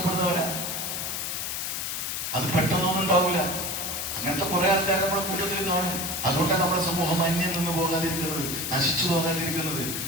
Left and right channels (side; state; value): left; noise; hiss, 3 dB below the sound